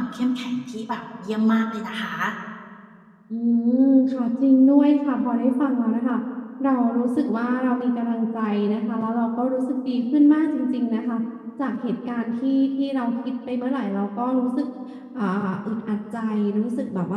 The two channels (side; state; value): both; identical; correlation 1.00